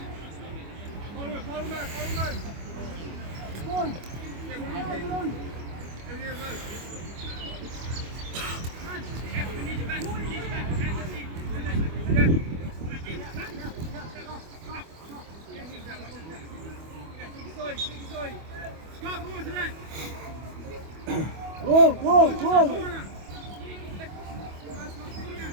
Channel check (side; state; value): left; late; 25 ms